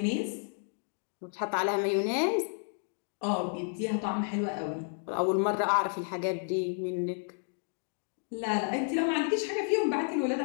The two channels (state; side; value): silent; right; 56 dB below the other